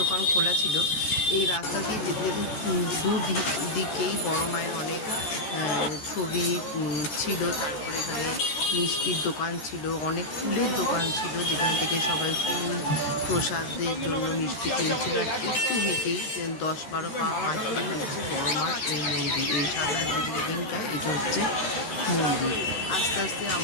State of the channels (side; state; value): right; late; 14 ms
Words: খোলা ছিল। এই রাস্তা দিয়ে যেতে যেতে দুদিকেই বড় মায়ের অনেক ছবি ছিল। তারপরে এখানে মিষ্টির দোকান ছিল, অনেক ফুলের দোকান ছিল, যেখান থেকে সবাই ফুল প্রসাদের জন্য মিষ্টি কিনছিল। আর একটু হেঁটেই 10-12 পা হাঁটলেই হচ্ছে বড় মার এই মন্দির। এই সাদা যে বিল্ডিংটা, এটা হচ্ছে মন্দির। আস্তে আস্তে